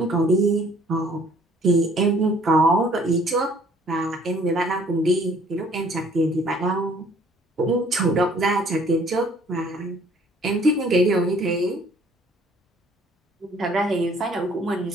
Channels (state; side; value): normal; both; correlation 0.58